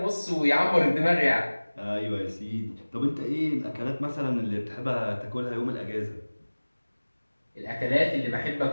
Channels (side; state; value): both; inverted; correlation -1.00